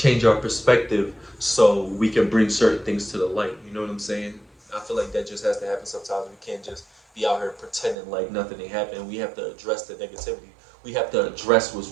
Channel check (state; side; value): drops out; left; at 8.0 s